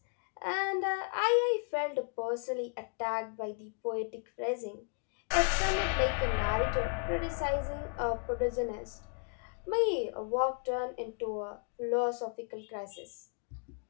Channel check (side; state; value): right; quieter; 39.7 dB